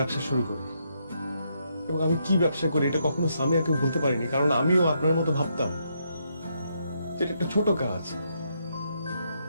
শুরু করি। এবং আমি কি ব্যবসা করি এটা কখনো সামিয়াকে বলতে পারিনি, কারণ আমিও আপনার মতো ভাবতাম যেটা একটা ছোট কাজ,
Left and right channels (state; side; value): inverted; both; correlation -0.77